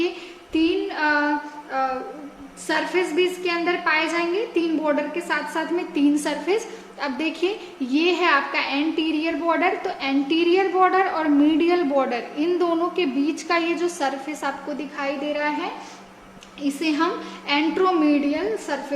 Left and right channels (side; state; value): both; identical; correlation 1.00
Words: 3 सरफेस भी इसके अंदर पाए जाएंगे, 3 बॉर्डर के साथ साथ में 3 सरफेस। अब देखिए ये है आपका एंटीरियर बॉर्डर, तो एंटीरियर बॉर्डर और मीडियल बॉर्डर इन दोनों के बीच का ये जो सरफेस आपको दिखाई दे रहा है, इसे हम एंट्रोमीडियल